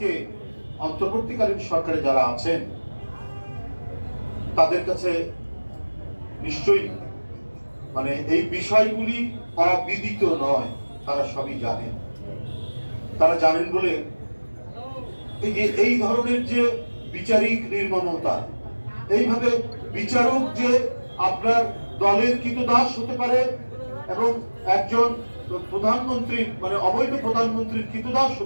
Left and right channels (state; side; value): inverted; both; correlation -1.00